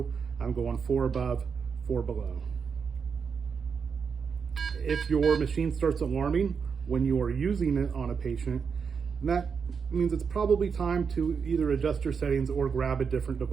I'm going 4 above, 4 below. If your machine starts alarming when you are using it on a patient, that means it's probably time to either adjust your settings or grab a different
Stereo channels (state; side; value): quieter; left; 6.0 dB